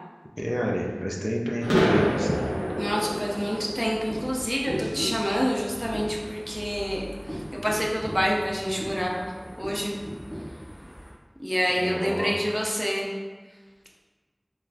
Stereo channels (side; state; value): both; identical; correlation 1.00